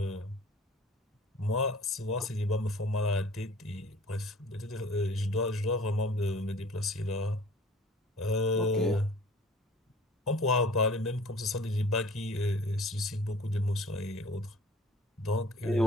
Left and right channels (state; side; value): normal; both; correlation 0.49